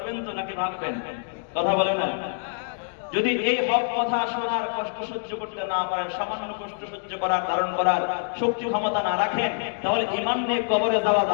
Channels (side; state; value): right; silent; digital silence